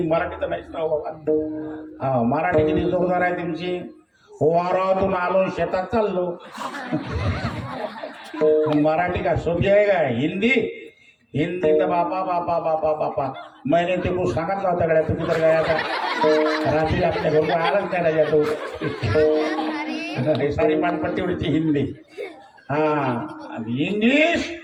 मराठी तर नाहीच ना बाबा. हा, मराठी किती जोरदार आहे तुमची? वारातून आलो शेतात चाललो. मराठी का सोपी आहे का? हिंदी हिंदी तर बापा बापा बापा बापा मैंने ते कुछ सांगितलं होता गड्या तुम्ही तर गया था रात्री आपल्या घरून आलाच नाही राजा तो. सारी पानपट्टी उडीची हिंदी. हा आणि इंग्लिश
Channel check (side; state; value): both; identical; correlation 1.00